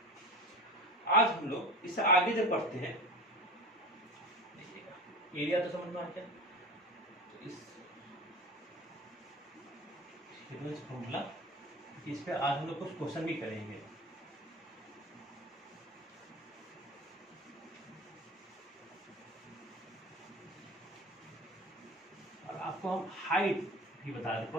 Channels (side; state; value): both; normal; correlation 0.32